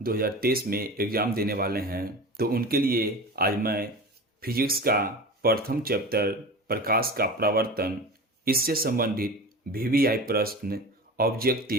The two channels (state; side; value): normal; both; correlation 0.33